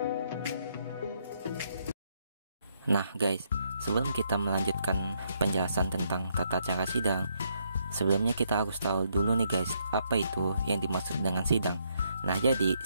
Nah guys, sebelum kita melanjutkan penjelasan tentang tata cara sidang, sebelumnya kita harus tahu dulu nih guys, apa itu yang dimaksud dengan sidang. Nah, jadi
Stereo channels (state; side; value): inverted; both; correlation -0.74